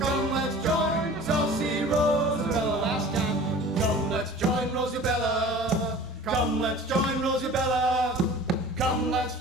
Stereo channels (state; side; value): normal; both; correlation 0.42